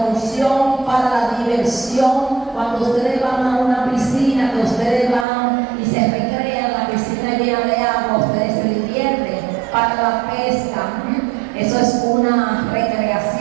para la diversión. Cuando ustedes van a una piscina, que ustedes van y se recrean, la piscina llena de agua, ustedes se divierten. Para la pesca, eso es una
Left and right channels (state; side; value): drops out; left; at 5.2 s